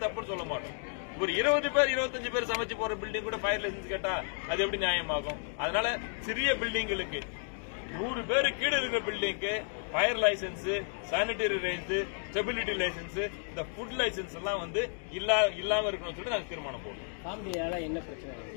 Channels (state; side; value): silent; right; 56 dB below the other